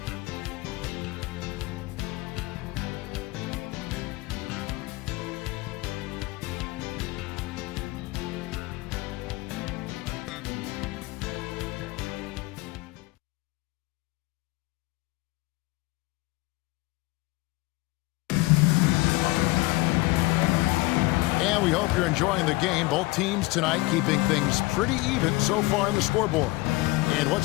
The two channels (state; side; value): quieter; right; 21.5 dB